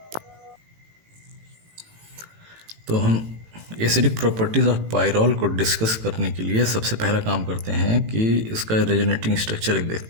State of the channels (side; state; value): left; late; 18 ms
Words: तो हम एसिडिक प्रॉपर्टीज़ ऑफ पायरोल को डिस्कस करने के लिए सबसे पहला काम करते हैं कि इसका रेजोनेटिंग स्ट्रक्चर एक